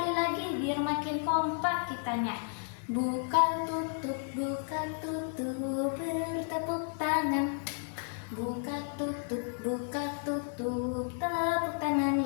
lagi biar makin kompak kitanya. Buka tutup, bertepuk tangan. Buka tutup, tepuk tangan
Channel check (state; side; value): silent; right; 56 dB below the other